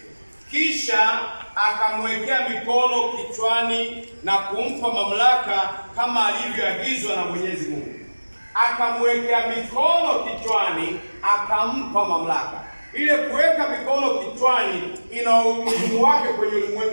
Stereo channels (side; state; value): both; inverted; correlation -1.00